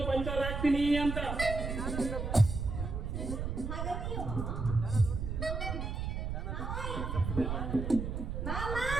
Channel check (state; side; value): noise; right; rumble, 3 dB below the sound